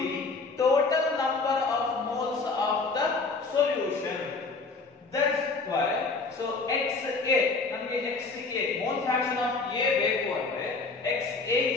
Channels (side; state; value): right; quieter; 4.0 dB